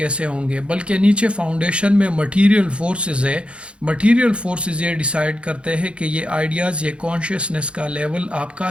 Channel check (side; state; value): left; late; 0.058 ms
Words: ہوں گے, بلکہ نیچے فاؤنڈیشن میں مٹیریل فورسز ہے. مٹیریل فورسز یہ ڈیسائیڈ کرتے ہیں کہ یہ آئیڈیاز, یہ کانشیسنس کا لیول آپ کا